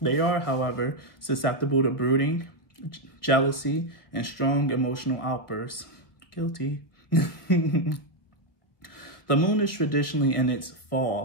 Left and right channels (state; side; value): late; right; 1.0 ms